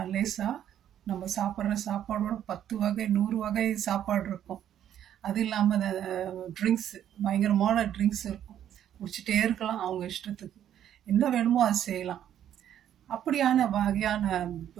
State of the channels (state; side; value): quieter; left; 10.5 dB